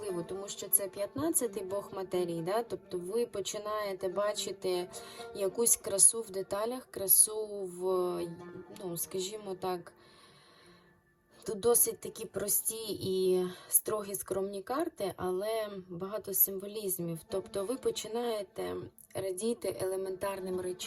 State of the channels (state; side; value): identical; both; correlation 1.00